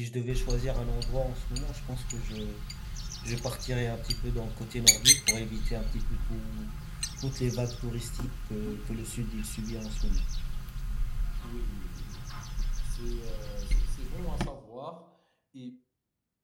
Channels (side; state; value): both; identical; correlation 1.00